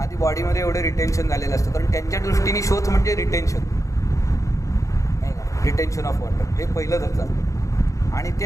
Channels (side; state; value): right; late; 0.15 ms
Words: बॉडीमध्ये एवढे रिटेन्शन झालेलं असतं, कारण त्यांच्या दृष्टीने शोध म्हणजे रिटेन्शन नाही का, रिटेन्शन ऑफ वॉटर हे पहिलं धरतात आणि ते